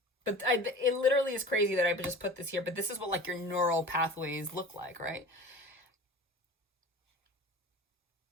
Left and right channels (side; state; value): both; normal; correlation 0.38